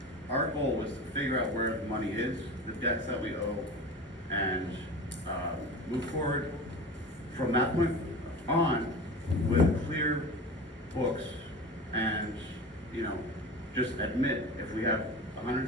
our goal was to figure out where the money is, the debts that we owe, and move forward from that point on with clear books and, just admit if we have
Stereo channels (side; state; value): both; normal; correlation 0.33